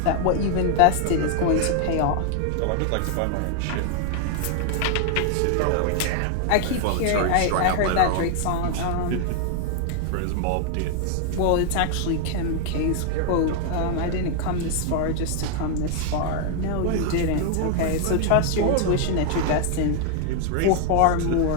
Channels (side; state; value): both; different; correlation 0.00